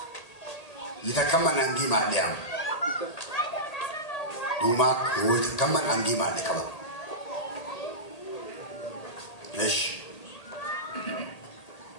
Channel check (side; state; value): right; late; 1.8 ms